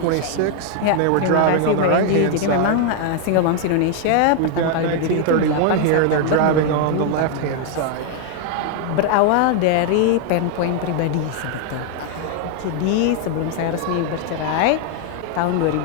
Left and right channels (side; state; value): both; different; correlation 0.00